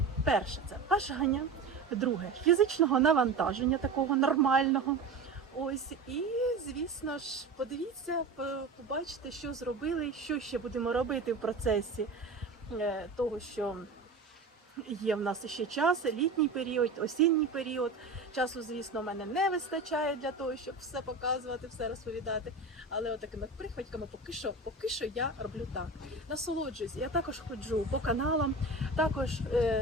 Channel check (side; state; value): left; quieter; 3.6 dB